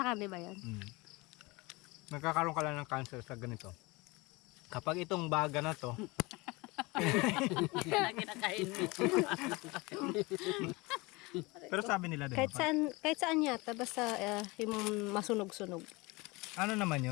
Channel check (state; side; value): quieter; right; 24.3 dB